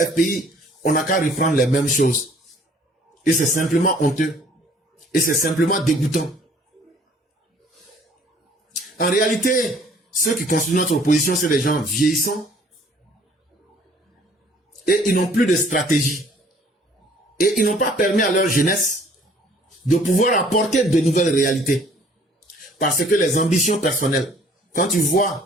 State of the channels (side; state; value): both; normal; correlation 0.57